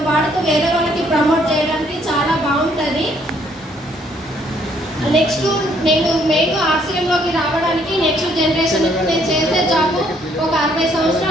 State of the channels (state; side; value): normal; both; correlation 0.66